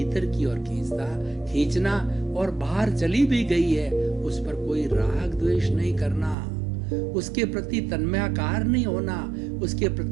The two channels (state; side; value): drops out; left; at 6.4 s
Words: की ओर खींचना, और बाहर चली भी गई है उस पर कोई राग द्वेष नहीं करना, उसके प्रति तन्मयाकार नहीं होना, उसके